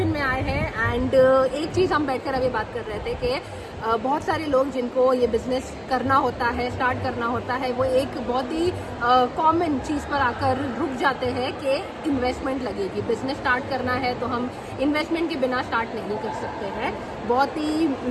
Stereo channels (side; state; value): both; identical; correlation 1.00